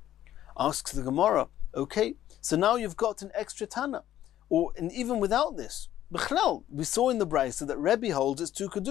Asks the Gemara, okay, so now you've got an extra Tana. And even without this, B'chlal, we saw in the Braisa that Rebbe holds it's two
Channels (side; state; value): right; quieter; 12.4 dB